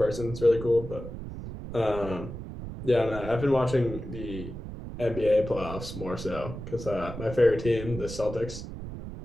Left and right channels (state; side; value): noise; right; rumble, 9 dB below the sound